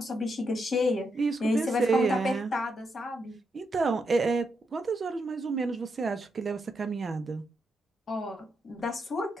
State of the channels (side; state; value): both; normal; correlation 0.82